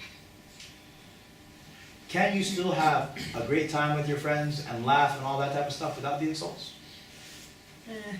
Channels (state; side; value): identical; both; correlation 1.00